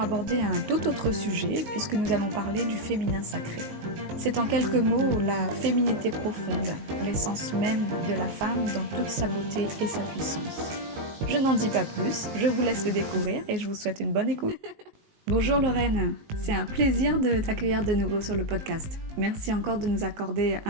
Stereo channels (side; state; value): left; late; 19 ms